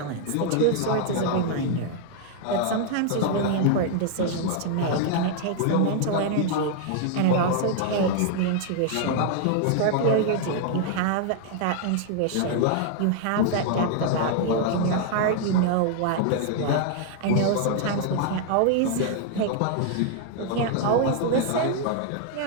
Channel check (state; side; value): different; both; correlation 0.00